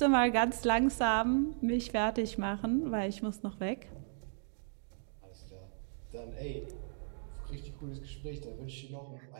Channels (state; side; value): silent; left; digital silence